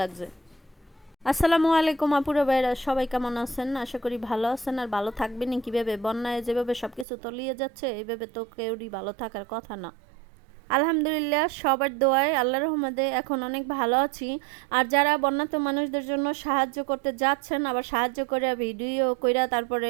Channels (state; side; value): drops out; left; at 7.1 s